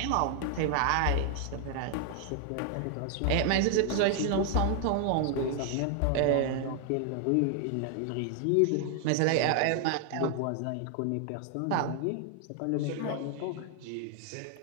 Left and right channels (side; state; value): both; different; correlation 0.00